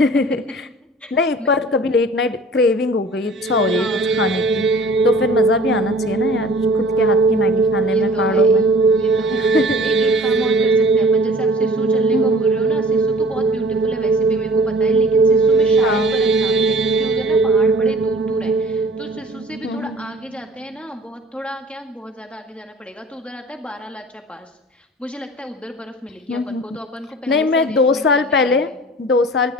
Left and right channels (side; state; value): both; normal; correlation 0.47